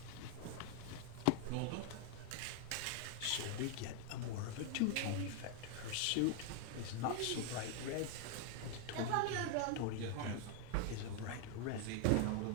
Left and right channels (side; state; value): both; different; correlation 0.00